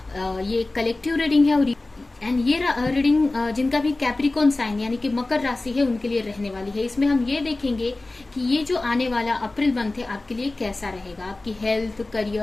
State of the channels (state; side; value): quieter; right; 3.0 dB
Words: ये कलेक्टिव रीडिंग है और ये रीडिंग जिनका भी कैप्रिकॉन साइन यानी कि मकर राशि है उनके लिए रहने वाली है। इसमें हम ये देखेंगे कि ये जो आने वाला अप्रैल मंथ है आपके लिए कैसा रहेगा, आपकी हेल्थ,